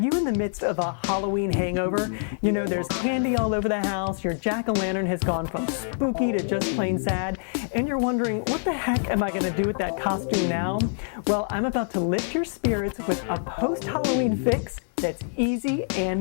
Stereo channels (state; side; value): silent; right; 61 dB below the other